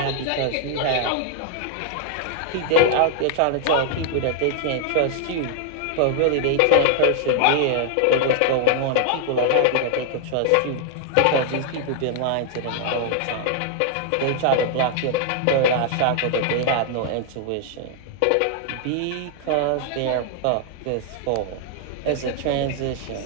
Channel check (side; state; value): both; different; correlation 0.00